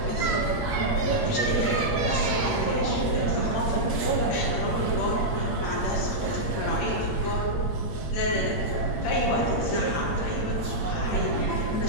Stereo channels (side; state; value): right; late; 8.7 ms